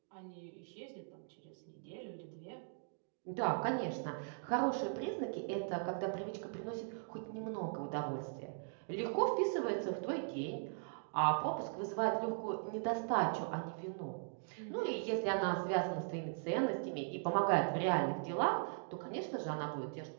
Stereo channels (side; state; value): left; silent; digital silence